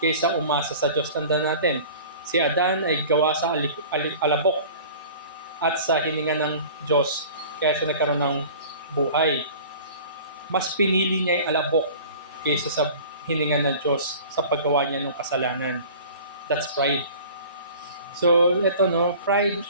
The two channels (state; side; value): inverted; both; correlation -0.43